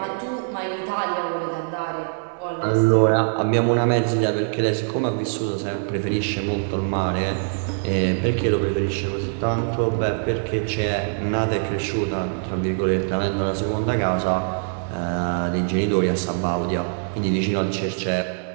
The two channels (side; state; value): left; silent; 63 dB below the other